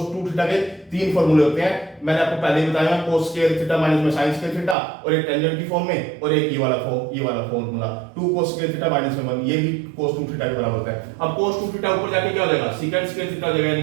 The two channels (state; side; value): drops out; left; at 4.8 s